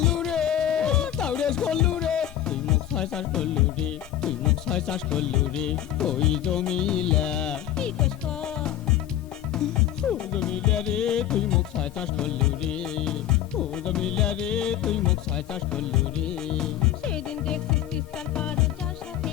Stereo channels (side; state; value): right; quieter; 11.7 dB